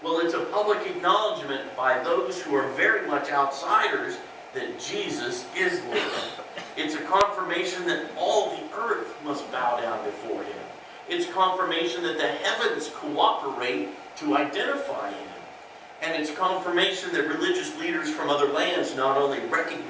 Well, it's a public acknowledgement by those who are very much outsiders that Jesus is Lord. It's a confirmation that all the earth must bow down before him. It's confirmation that the heavens cooperate to identify him. And it's confirmation that religious leaders from other lands not only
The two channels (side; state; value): both; identical; correlation 1.00